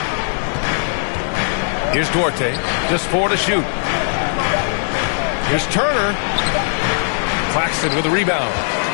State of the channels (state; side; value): silent; right; digital silence